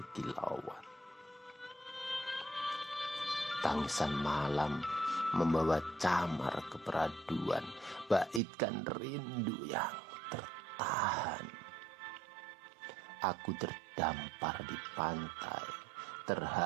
Tangisan malam membawa camar keperaduan, baitkan rindu yang tertahan. Aku terdampar di pantai,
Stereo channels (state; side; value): drops out; left; at 8.4 s